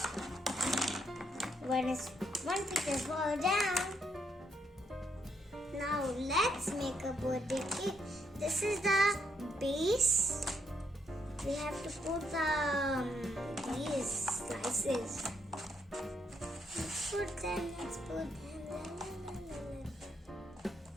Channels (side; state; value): both; normal; correlation 0.75